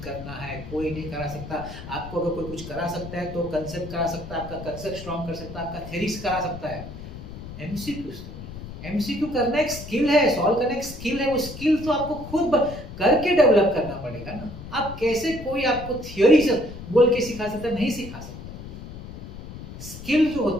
करना है, कोई नहीं करा सकता। आपको अगर कोई कुछ करा सकता है तो कंसेप्ट करा सकता है, आपका कंसेप्ट स्ट्रॉन्ग कर सकता है, आपका थ्योरीज करा सकता है। एमसीक्यू करना एक स्किल है, सॉल्व करना एक स्किल है, वो स्किल तो आपको खुद करके डेवलप करना पड़ेगा ना। आप कैसे कोई आपको थ्योरी से बोल के सिखा सकता है, नहीं सिखा सकता। स्किल जो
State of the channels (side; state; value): left; noise; rumble, 12 dB below the sound